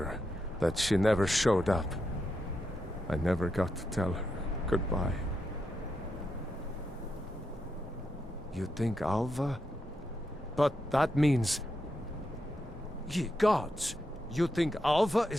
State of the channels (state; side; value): normal; both; correlation 0.85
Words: that she never showed up. I never got to tell her goodbye. You think Alva? But that means... Ye gods! You think Alva